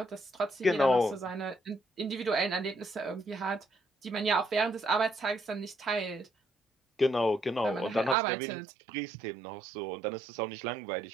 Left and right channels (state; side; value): drops out; left; at 8.2 s